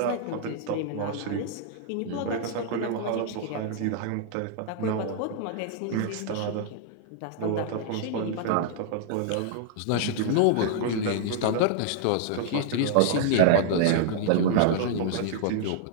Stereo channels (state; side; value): different; both; correlation -0.01